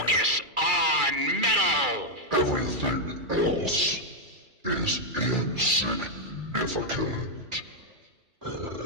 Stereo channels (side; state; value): left; late; 2.3 ms